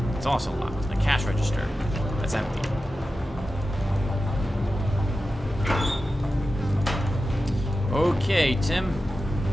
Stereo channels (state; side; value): normal; both; correlation 0.93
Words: It's also locked. A cash register. That's empty. Okay, Tim.